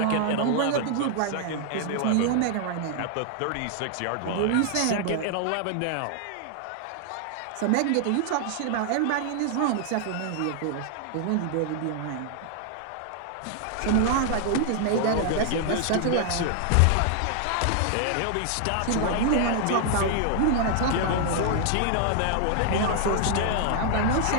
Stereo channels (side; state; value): both; different; correlation 0.00